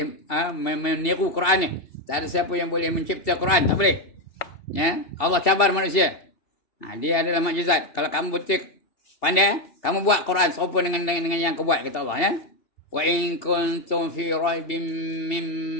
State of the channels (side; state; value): right; late; 2.7 ms